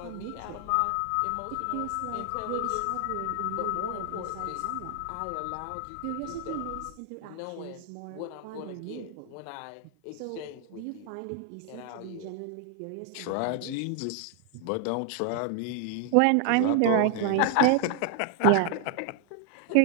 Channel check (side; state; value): both; different; correlation 0.00